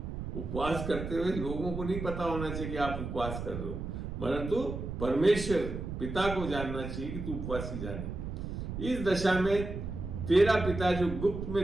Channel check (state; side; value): noise; right; rumble, 6 dB below the sound